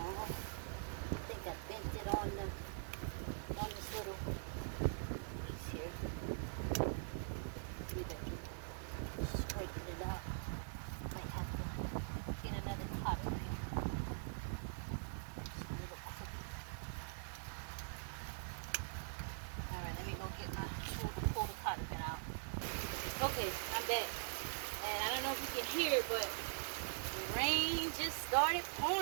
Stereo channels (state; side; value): silent; left; digital silence